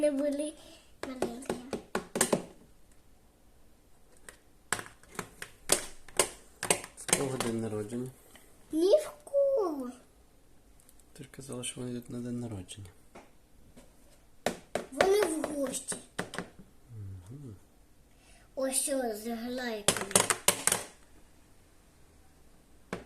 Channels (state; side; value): identical; both; correlation 1.00